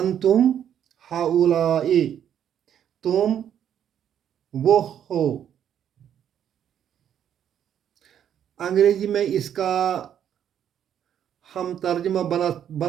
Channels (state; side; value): quieter; left; 9.6 dB